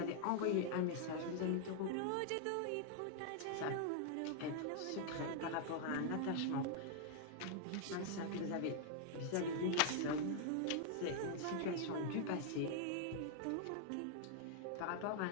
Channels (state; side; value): different; both; correlation 0.00